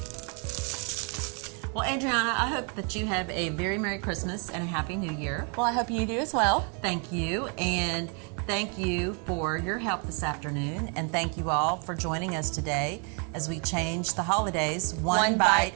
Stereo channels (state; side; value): quieter; left; 37.4 dB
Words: Well, Adriana, I hope that you have a very Merry Christmas and a Happy New Year. Well, I hope you do as well. Thank you, and thank you for your help this afternoon, and thank you all for joining us today as we change the holidays one bite